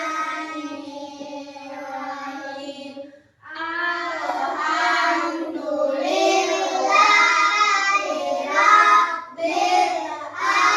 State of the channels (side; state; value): both; identical; correlation 1.00